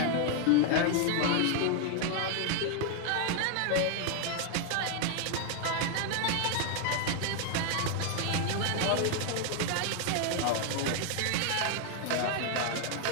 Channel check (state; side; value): different; both; correlation 0.00